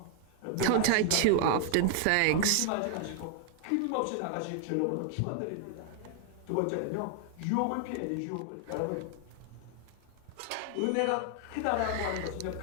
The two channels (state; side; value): different; both; correlation 0.00